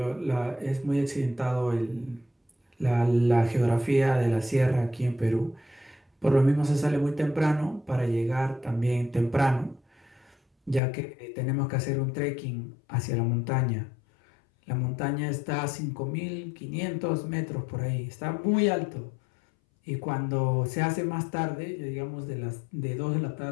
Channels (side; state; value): right; drops out; at 10.8 s